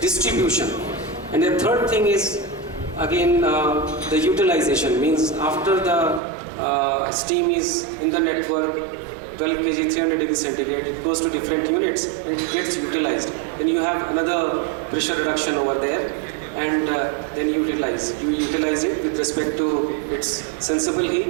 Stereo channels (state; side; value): drops out; left; at 6.2 s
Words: distribution, and the third thing is again the utilization, means after the steam is in the network, 12 kg, 300 degrees centigrade, it goes to different units and it gets utilized. Then you have another pressure reduction over there, and then you utilize it with respect to its sensible